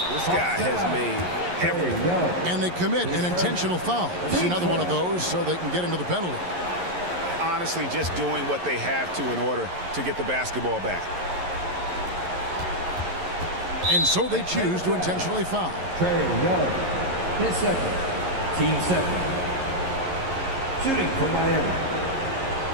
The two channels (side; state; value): left; late; 11 ms